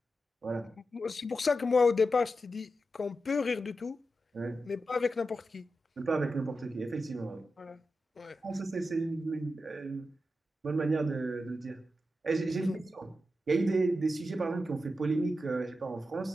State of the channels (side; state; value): both; normal; correlation 0.89